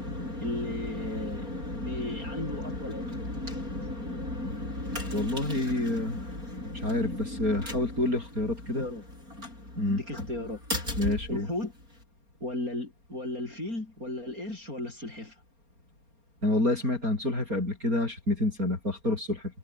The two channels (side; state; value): left; late; 4.3 ms